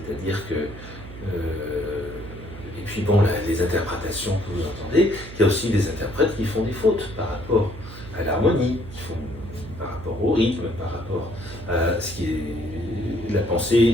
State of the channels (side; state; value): right; noise; hum, 14 dB below the sound